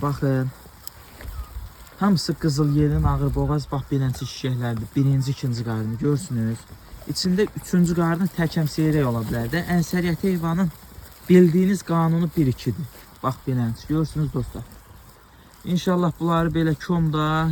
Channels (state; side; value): identical; both; correlation 1.00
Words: baxın. Hamısı qızıl yelin ağır boğaz bax beləncə şişəklərdir. Birinci, ikinci qarnı görsünüz. İçində üçüncü qarnı təkəm seyrək ola bilər də. Ənsəriyyət heyvanın bildiyiniz qanunu 1-2-dir. Bax beləncə görürsünüz dostlar. İnşallah bunları belə komda,